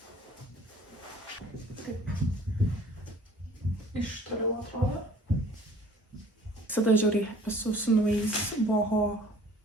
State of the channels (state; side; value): normal; both; correlation 0.51